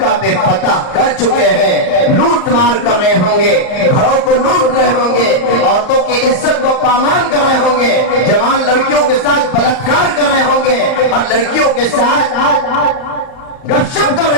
پہ فتح کر چکے ہیں، لوٹ مار کر رہے ہوں گے، گھروں کو لوٹ رہے ہوں گے، عورتوں کی عزت کو پامال کر رہے ہوں گے، جوان لڑکیوں کے ساتھ بلاತ್ಕಾರ کر رہے ہوں گے، اور لڑکیوں کے ساتھ گپ شپ کر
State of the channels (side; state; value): right; late; 38 ms